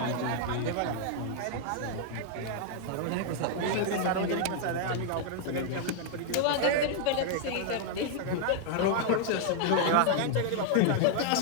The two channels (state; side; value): different; both; correlation 0.00